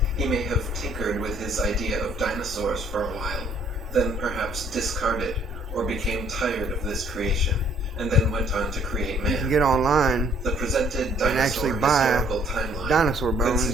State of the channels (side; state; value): both; normal; correlation 0.62